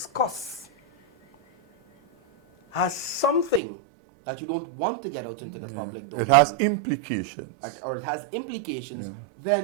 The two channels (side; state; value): left; drops out; at 3.6 s